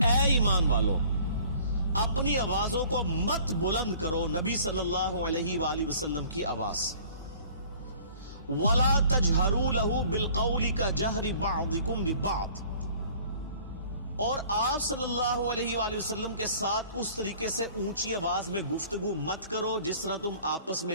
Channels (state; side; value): inverted; both; correlation -0.52